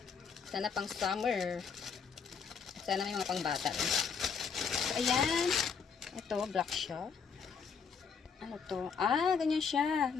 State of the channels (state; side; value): quieter; right; 6.1 dB